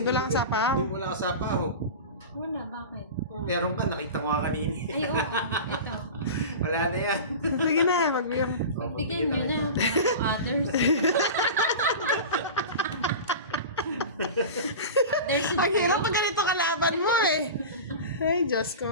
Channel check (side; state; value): both; inverted; correlation -0.30